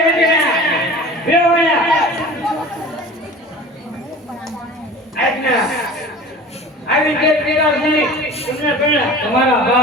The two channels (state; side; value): normal; both; correlation 0.39